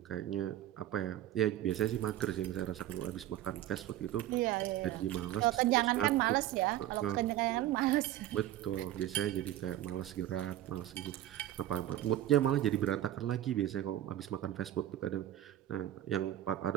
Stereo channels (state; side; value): quieter; left; 13.1 dB